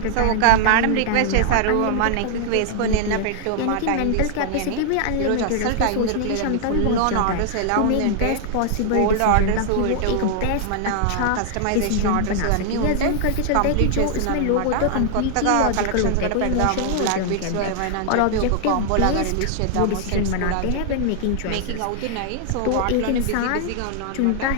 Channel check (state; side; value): different; both; correlation 0.00